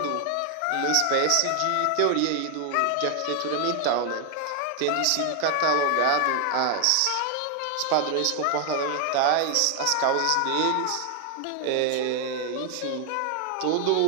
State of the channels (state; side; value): different; both; correlation 0.00